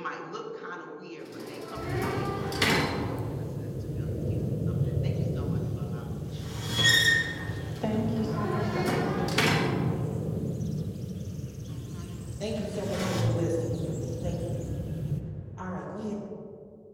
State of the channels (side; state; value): both; identical; correlation 1.00